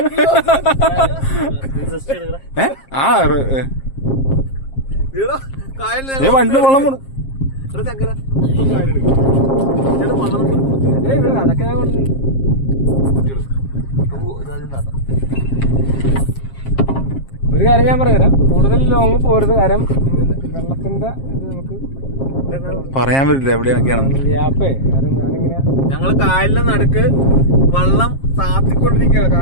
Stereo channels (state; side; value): late; right; 7.5 ms